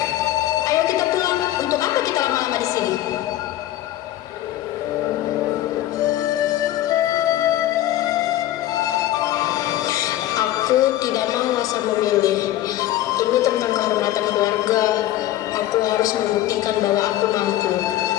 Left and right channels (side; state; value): right; quieter; 14.0 dB